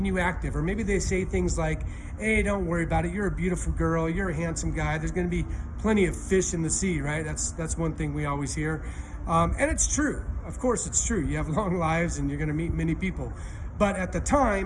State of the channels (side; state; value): both; identical; correlation 1.00